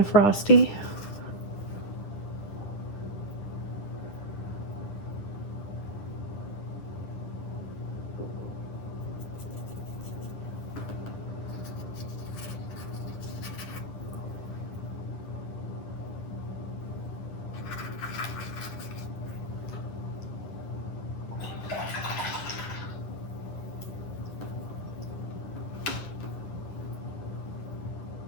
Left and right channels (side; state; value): right; late; 10 ms